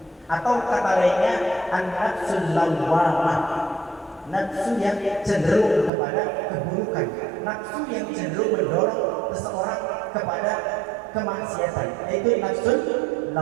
Atau kata lainnya, an-nafsul lawwamah. Nafsu yang cenderung kepada keburukan, nafsu yang cenderung mendorong seseorang kepada kemaksiatan, yaitu nafsu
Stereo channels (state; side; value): drops out; left; at 5.9 s